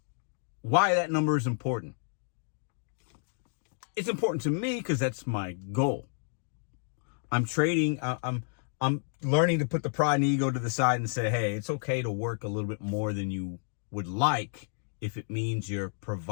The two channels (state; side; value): silent; right; digital silence